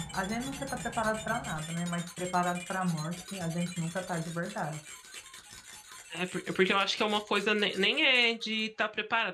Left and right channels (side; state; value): both; identical; correlation 1.00